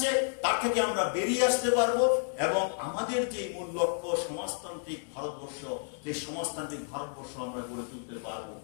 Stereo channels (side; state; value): right; silent; digital silence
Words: তার থেকে আমরা বেরিয়ে আসতে পারবো এবং আমাদের যে মূল লক্ষ্য সমাজতান্ত্রিক ভারতবর্ষ, সেই সমাজতান্ত্রিক ভারতবর্ষ আমরা গড়ে তুলতে পারবো।